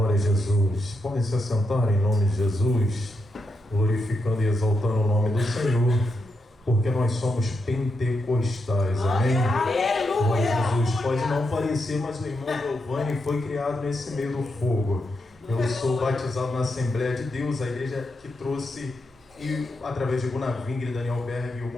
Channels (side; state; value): both; normal; correlation 0.84